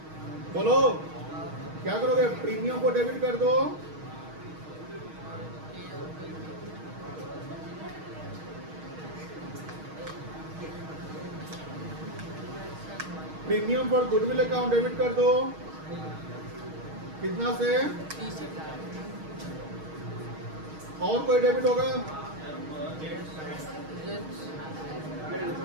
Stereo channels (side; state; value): left; late; 6.4 ms